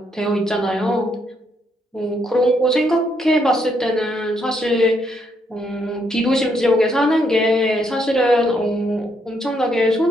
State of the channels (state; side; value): normal; both; correlation 0.74